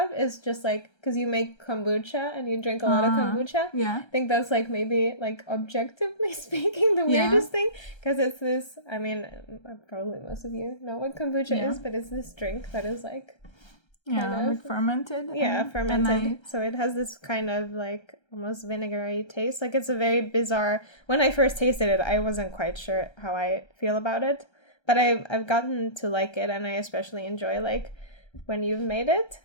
is just, like, because you make kombucha and you drink a lot of kombucha. Yeah. I think that's, like, maybe, like, objectively speaking, the weirdest thing. Because it's this, I mean, probably most of you know what kombucha is, but it's this drink that is, like... like fermented. Yeah, fermented. So it has this kind of, like, almost vinegary taste. Like, it's a very bizarre... When I first tasted it, I wasn't quite sure how I feel about it. But I've gotten to like it, and I especially enjoy, like, when you've made it.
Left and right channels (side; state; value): right; late; 1.3 ms